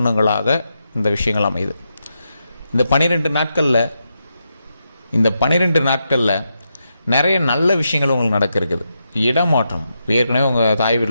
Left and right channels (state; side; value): inverted; both; correlation -0.84